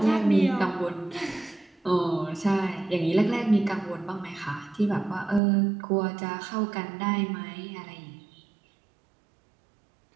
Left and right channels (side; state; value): left; drops out; at 5.4 s